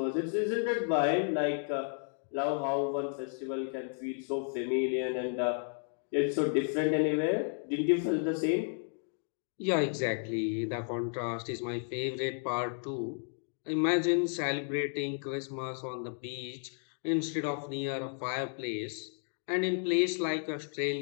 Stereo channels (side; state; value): right; silent; 56 dB below the other